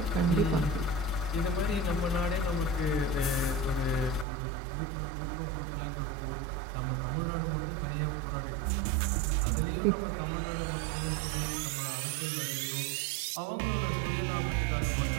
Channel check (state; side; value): drops out; left; at 4.2 s